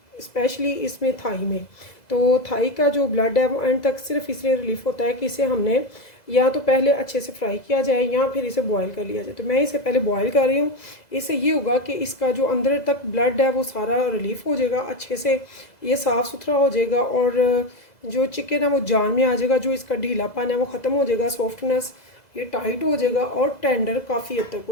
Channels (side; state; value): right; late; 2.0 ms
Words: स्पेशली इसमें थाई में। तो थाई का जो ब्लड है वो एंड तक सिर्फ इसलिए रिलीफ होता है कि इसे हमने या तो पहले अच्छे से फ्राई किया जाए या फिर इसे बॉईल कर लिया जाए। तो मैं इसे पहले बॉईल कर रही हूँ। इससे ये होगा कि इसका जो अंदर तक ब्लड है वो सारा रिलीफ हो जाएगा, अच्छे से ये साफ़ सुथरा हो जाएगा और जो चिकन है वो जान में आ जाएगा, जो इसका ढीलापन है वो ख़त्म हो जाएगा, सॉफ्टनेस ये टाइट हो जाएगा और टेंडर काफ़ी हद तक